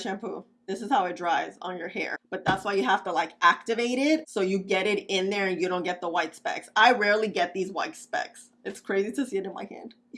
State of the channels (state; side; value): identical; both; correlation 1.00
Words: This is how it dries on your hair. But that's why you have to like activate it so you get it in there and you don't get the white specks. I rarely get these white specks. It's crazy to see it in my hand.